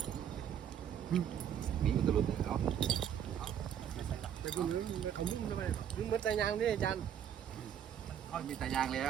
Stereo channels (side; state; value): left; quieter; 9.2 dB